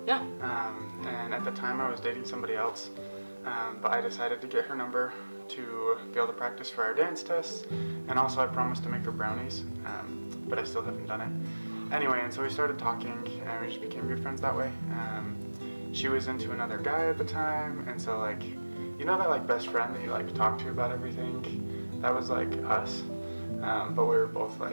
at the time I was dating somebody else, but I decided to get her number to be able to practice for our dance tests, and also I promised to make her brownies, but I still haven't done it. Anyway, and so we started talking, and we just became good friends that way. She was into another guy at the time, and so like, you know that like best friend that you like talk to about everything? That was like us, but we were both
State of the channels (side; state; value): both; inverted; correlation -1.00